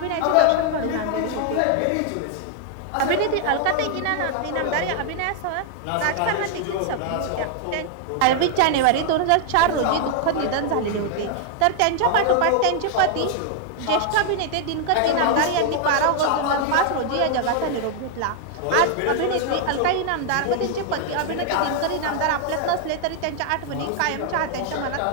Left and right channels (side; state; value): both; different; correlation 0.00